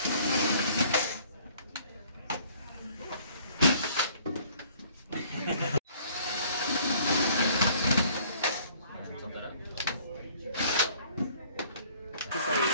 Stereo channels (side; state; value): both; inverted; correlation -0.56